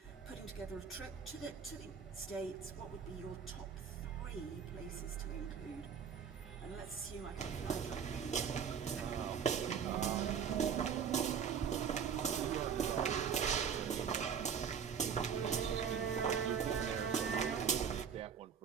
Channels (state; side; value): quieter; left; 7.2 dB